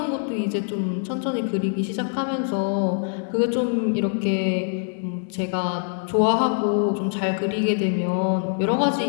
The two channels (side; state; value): right; silent; 63 dB below the other